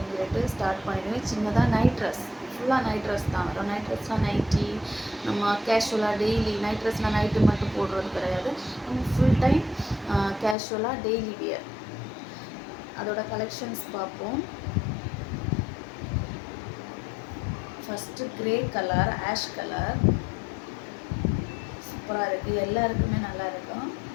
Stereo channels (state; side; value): drops out; right; at 10.6 s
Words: சொல்லிட்டு ஸ்டார்ட் பண்ணிடுவேன். சின்னதாக நைட் ட்ரெஸ், ஃபுல்லாக நைட் ட்ரெஸ் தான் வரும். நைட் ட்ரெஸ்னால் நைட்டி, நம்ம கேஷுவலாக டெய்லி நைட் ட்ரெஸ்னால் நைட்டு மட்டும் போடுறது கிடையாது. நம்ம ஃபுல் டைம் கேஷுவலாக டெய்லி வியர். அதோட கலெக்ஷன்ஸ் பார்ப்போம். First grey colour, ash colour சூப்பராக இருக்குது. எல்லாருக்குமே நல்லா இருக்கும்.